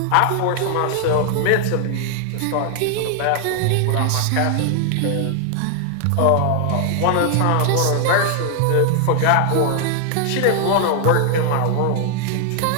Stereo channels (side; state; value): both; different; correlation 0.00